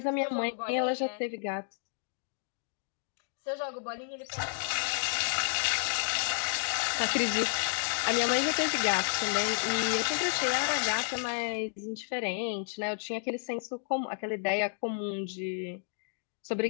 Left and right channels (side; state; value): right; silent; digital silence